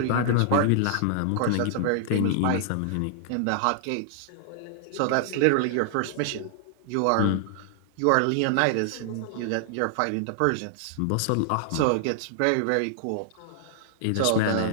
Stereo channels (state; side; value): different; both; correlation 0.00